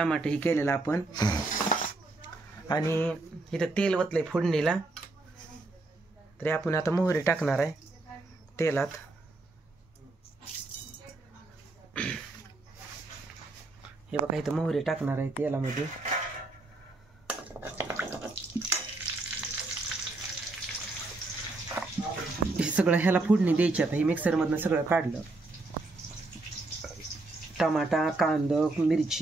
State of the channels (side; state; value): left; quieter; 3.1 dB